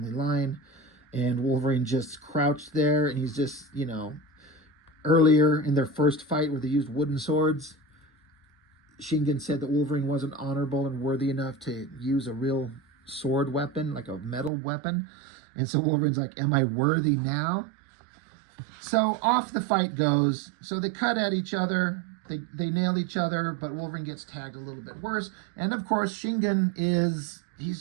line. And Wolverine just crouched there, and he's just, you know, earlier in their first fight where they used wooden swords, Shingen said that Wolverine wasn't honorable and worthy enough to use a real sword weapon, like a metal weapon. And so Wolverine's like, am I worthy now? So off the fight goes. So they cut at each other. They nail each other, but Wolverine gets tagged a little bit worse. And of course, Shingen he's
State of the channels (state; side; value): drops out; left; at 14.5 s